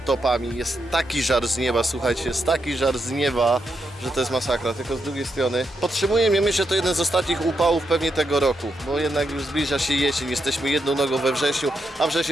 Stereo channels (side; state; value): both; normal; correlation 0.83